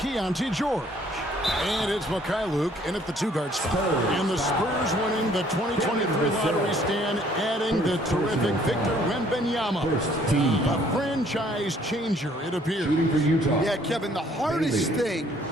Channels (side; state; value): both; normal; correlation 0.61